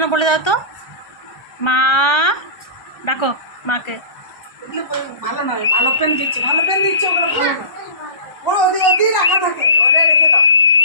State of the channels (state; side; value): late; right; 1.3 ms